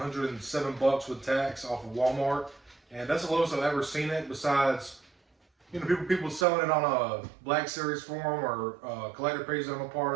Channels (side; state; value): left; drops out; at 6.5 s